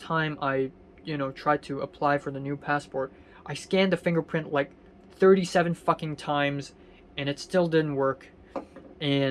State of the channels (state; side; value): identical; both; correlation 1.00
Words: I tried to apply for the new passport, I scanned the fingerprint like 37 fucking times and it still didn't work.